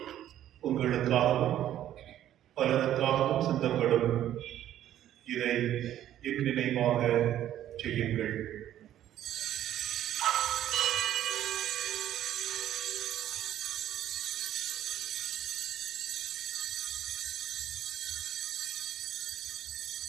உங்களுக்காகவும் பலருக்காகவும் சிந்தப்படும். இதை என் நினைவாக செய்யுங்கள்.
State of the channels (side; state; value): left; quieter; 11.9 dB